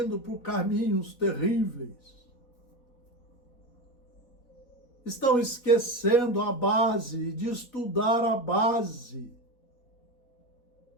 por caminhos terríveis. Estão esquecendo a base, de estudar a base.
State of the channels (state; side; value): late; right; 4.1 ms